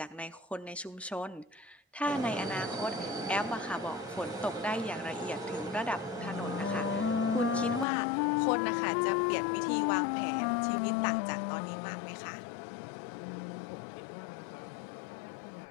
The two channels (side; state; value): right; drops out; at 7.9 s